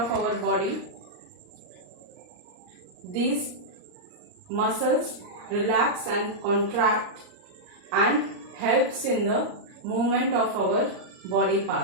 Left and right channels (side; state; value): left; late; 39 ms